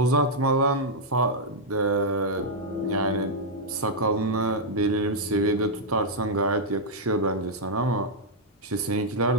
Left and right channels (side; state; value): both; normal; correlation -0.05